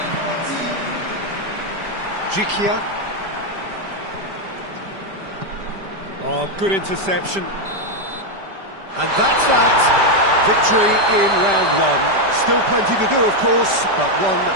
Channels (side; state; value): left; late; 5.1 ms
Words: Jikia. Oh, good interception. And that's that. Victory in round one. Still plenty to do, of course, but one